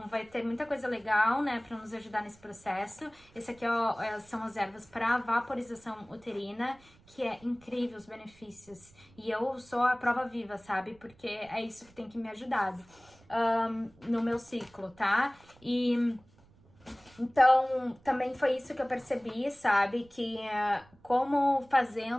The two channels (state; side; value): noise; right; rumble, 28 dB below the sound